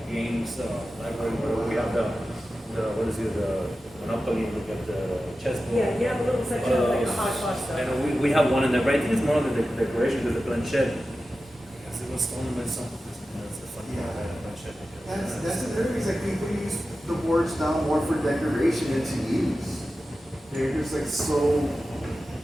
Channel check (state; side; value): normal; both; correlation 0.93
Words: games library where we have the what is it, the Monopoly, we got the chessboard. Yeah, you have a little section of like a hodgepodge stuff. And we have one in there, but I think it's more of the decoration because the planchette. Because it was stolen by some. That's the funny part about the planchette. That's another reason like people use the boards now more for decoration than to use. They're just like so